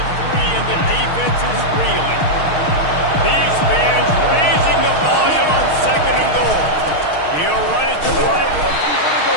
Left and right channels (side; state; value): right; late; 6.4 ms